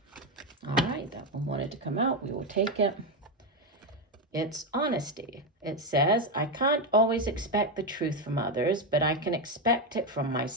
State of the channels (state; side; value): normal; both; correlation 0.08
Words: All right, that one wanted to come out. We will take it. It's honesty. It says, I can't always expect the truth from others, but I can expect it from